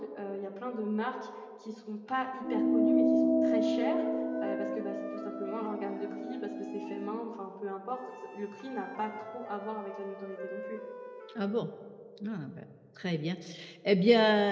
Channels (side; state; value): both; identical; correlation 1.00